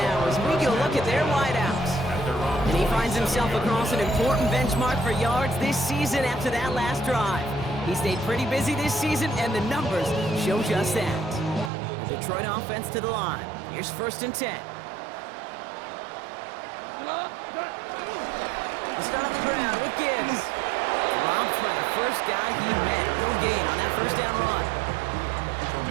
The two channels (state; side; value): drops out; left; at 11.7 s